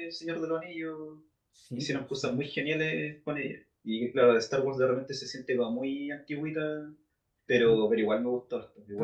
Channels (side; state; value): both; identical; correlation 1.00